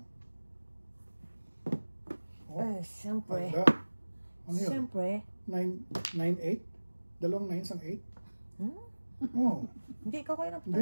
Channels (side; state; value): both; inverted; correlation -1.00